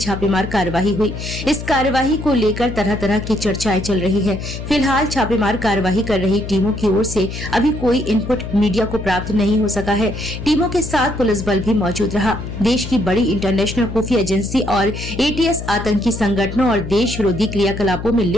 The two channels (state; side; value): noise; left; hum, 8 dB below the sound